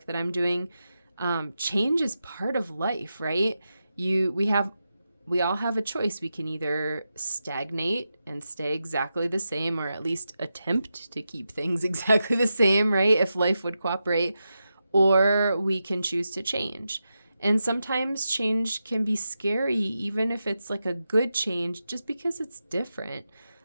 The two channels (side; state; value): both; inverted; correlation -0.89